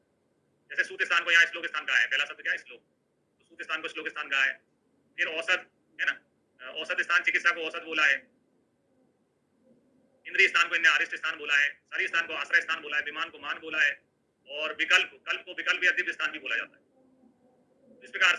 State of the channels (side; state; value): both; identical; correlation 1.00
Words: जैसे सूत्र स्थान को यहाँ श्लोक स्थान कहा है, पहला शब्द क्या है, श्लोक, तो सूत्र स्थान को श्लोक स्थान कहा है। फिर औसत, है ना, औसत स्थान चिकित्सा को औसत बोला है। इंद्रिय स्थान को इन्हें अरिष्ट स्थान बोला है, शरीर स्थान को आश्रय स्थान बोला है, विमान को मान बोला है, और विकल्प, कल्प को विकल्प या दिव्य स्थान भी बोला जाता है। इस प्रकार